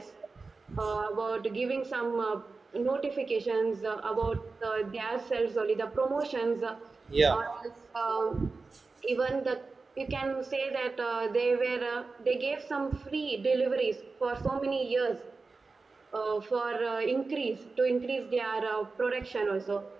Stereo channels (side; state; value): left; quieter; 4.0 dB